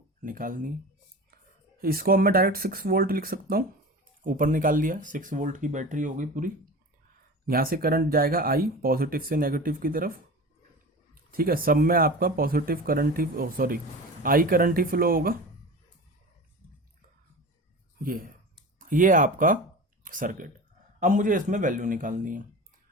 निकालनी है। इसको अब मैं डायरेक्ट 6 वोल्ट लिख सकता हूँ, ऊपर निकाल लिया। 6 वोल्ट की बैटरी हो गई पूरी। यहाँ से करंट जाएगा आई, पॉजिटिव से नेगेटिव की तरफ, ठीक है। सब में आपका positive current he, sorry, I current he flow होगा। ये आपका सर्किट। अब मुझे इसमें वैल्यू निकालनी है।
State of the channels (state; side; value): normal; both; correlation 0.33